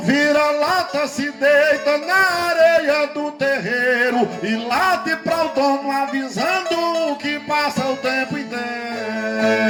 vira-lata se deita na areia do terreiro e late pra o dono avisando que passa o tempo inteiro.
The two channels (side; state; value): both; identical; correlation 1.00